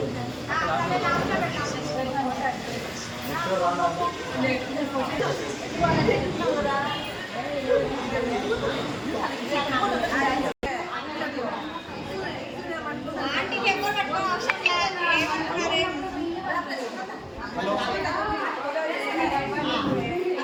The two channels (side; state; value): both; identical; correlation 1.00